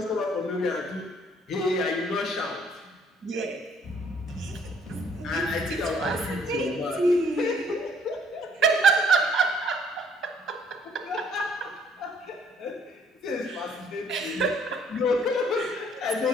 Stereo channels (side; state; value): both; normal; correlation 0.62